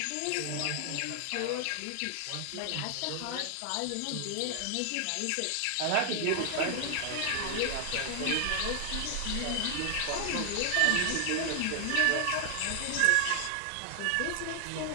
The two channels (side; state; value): both; different; correlation 0.00